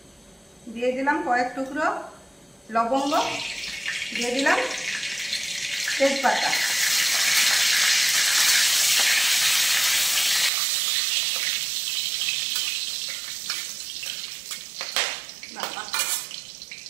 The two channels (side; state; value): left; drops out; at 10.5 s